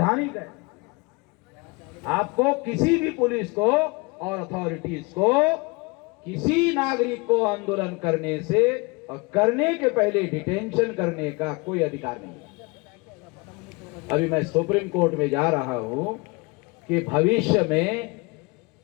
है। आपको किसी भी पुलिस को और अथॉरिटीज को किसी नागरिक को आंदोलन करने से और करने के पहले डिटेंशन करने का कोई अधिकार नहीं है। अभी मैं सुप्रीम कोर्ट में जा रहा हूं कि भविष्य में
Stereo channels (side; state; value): right; quieter; 27.2 dB